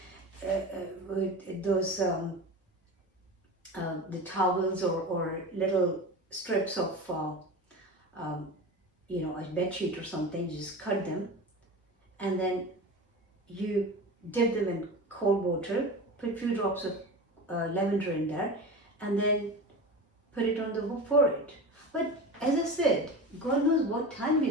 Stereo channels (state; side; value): normal; both; correlation 0.29